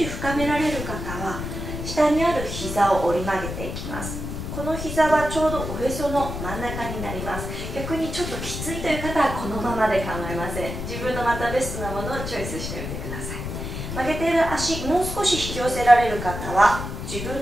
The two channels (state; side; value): noise; left; rumble, 6 dB below the sound